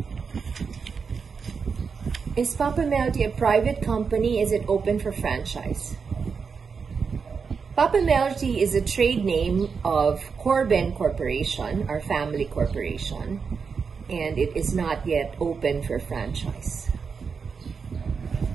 Is Papemelroti a private company? Is it open for franchise? Papemelroti is a trade name of Corben Corporation, our family corporation, and it is not yet open for franchise.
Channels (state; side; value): quieter; left; 5.6 dB